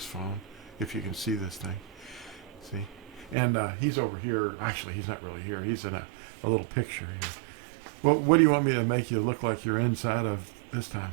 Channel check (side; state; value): left; drops out; at 3.4 s